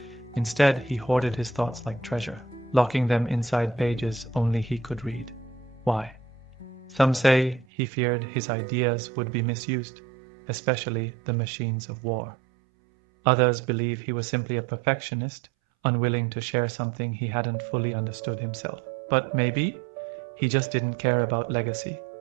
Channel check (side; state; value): left; drops out; at 7.7 s